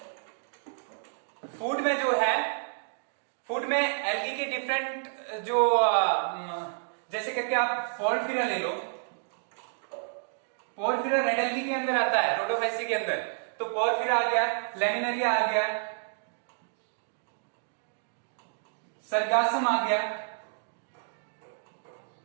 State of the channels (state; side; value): silent; left; digital silence